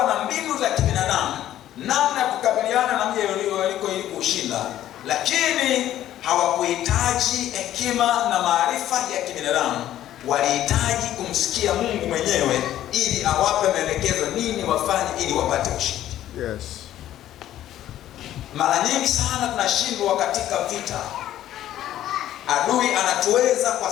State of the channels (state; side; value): quieter; right; 12.5 dB